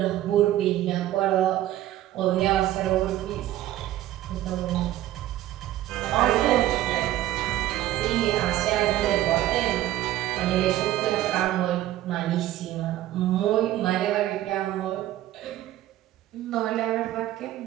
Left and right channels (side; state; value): left; quieter; 14.0 dB